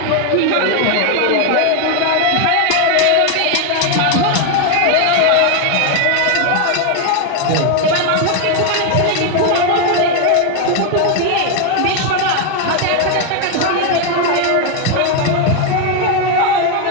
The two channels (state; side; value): different; both; correlation 0.01